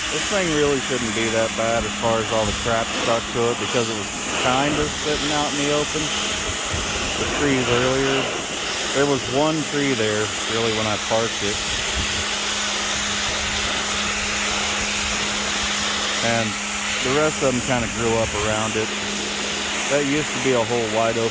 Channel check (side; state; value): both; identical; correlation 1.00